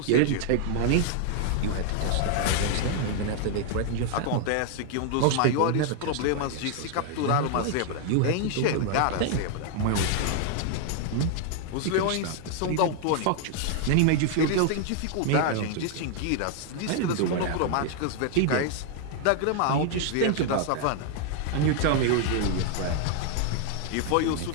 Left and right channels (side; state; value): both; different; correlation 0.00